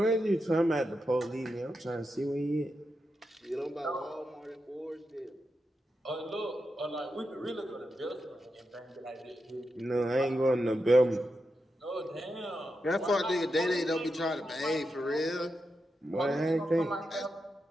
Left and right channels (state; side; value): normal; both; correlation 0.87